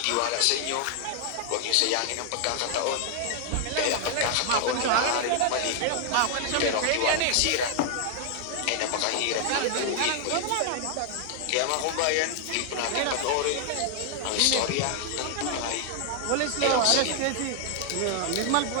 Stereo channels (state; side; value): different; both; correlation 0.00